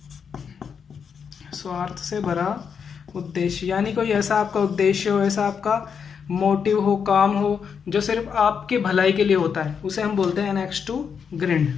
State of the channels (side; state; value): right; quieter; 6.7 dB